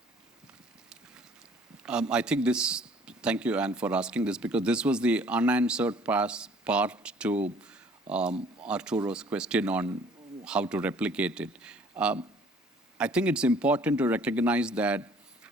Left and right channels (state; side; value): normal; both; correlation 0.55